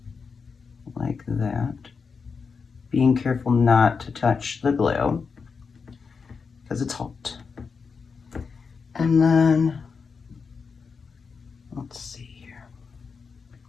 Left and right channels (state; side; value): quieter; right; 5.3 dB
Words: Like that. Being careful not to touch the glue because it's hot. And then, let's see here.